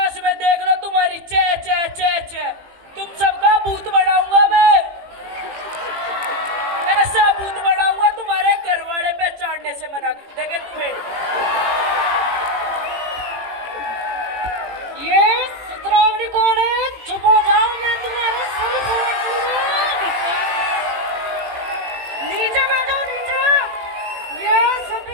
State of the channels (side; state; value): left; late; 18 ms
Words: में देख लो तुम्हारी चे चे चे चे। तुम सबका भूत बनाऊंगा मैं, ऐसा भूत बनाऊंगा तुम्हारे घर वाले पहचानने से मना कर देंगे तुम्हें। ये सिद्धरामनी कॉलेज, चुप हो जाओ, मैं तुम्हारे सर फोड़ दूंगा। नीचे बैठो नीचे, ये